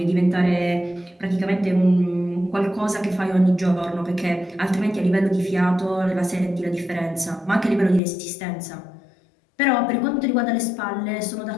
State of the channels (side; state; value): right; drops out; at 8.0 s